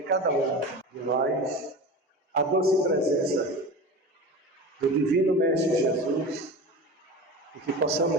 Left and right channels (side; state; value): both; normal; correlation 0.31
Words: cada um de nós, a doce presença do Divino Mestre Jesus e que